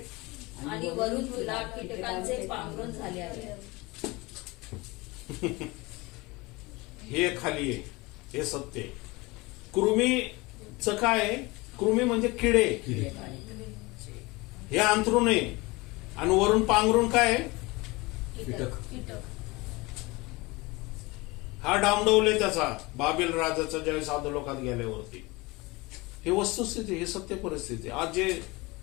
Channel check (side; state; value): right; quieter; 23.6 dB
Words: आणि वरून तुला कीटकांचे पांघरून झाले आहे. हे खाली आहे, हे सत्य. कृमीचं काय? कृमी म्हणजे किडे. हे अंथरून आहे आणि वरून पांघरून काय आहे? कीटक. हा डामडवले त्याचा बाबेल राजाचा ज्यावेळेस अधोलोकात गेल्यावरती. हे वस्तुस्थिती, हे सत्य परिस्थिती. आज जे